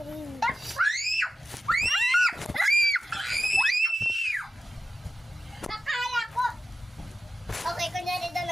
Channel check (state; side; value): normal; both; correlation 0.93